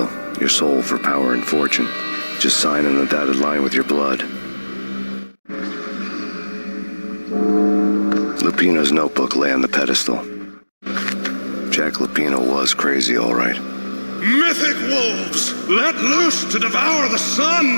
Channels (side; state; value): both; inverted; correlation -1.00